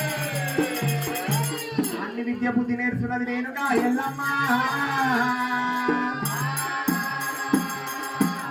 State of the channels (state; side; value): identical; both; correlation 1.00